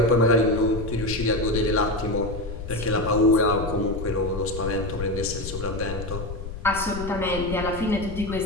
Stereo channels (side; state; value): left; noise; rumble, 8 dB below the sound